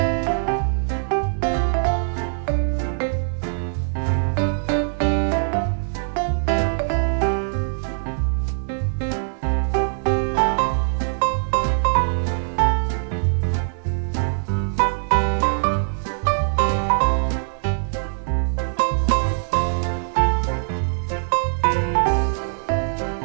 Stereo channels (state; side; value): silent; left; 63 dB below the other